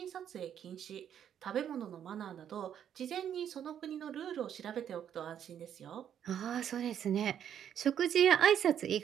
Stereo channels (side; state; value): left; quieter; 9.4 dB